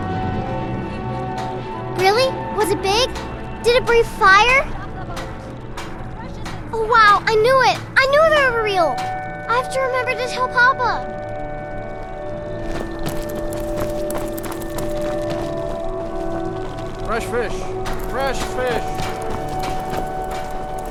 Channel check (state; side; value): identical; both; correlation 1.00